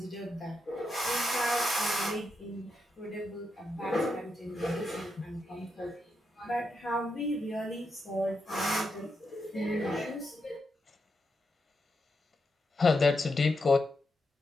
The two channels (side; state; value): both; normal; correlation 0.84